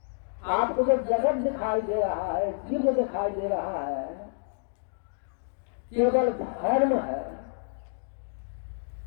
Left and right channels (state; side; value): silent; right; digital silence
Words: आपको जो जगत दिखाई दे रहा है, जीव दिखाई दे रहा है, केवल धर्म है।